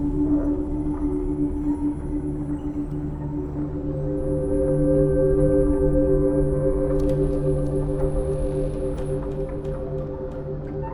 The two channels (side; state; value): both; identical; correlation 1.00